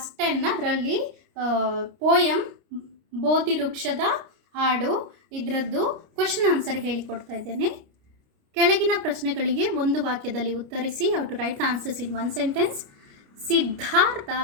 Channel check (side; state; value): left; late; 29 ms